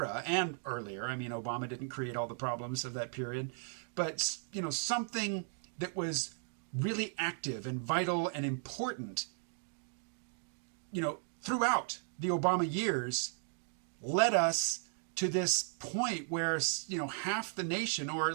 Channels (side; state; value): left; silent; 54 dB below the other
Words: and earlier. I mean, Obama didn't create all the problems of that period, but something that was really active and vital and important, throughout the Obama years, led us to this point where, half the nation, or a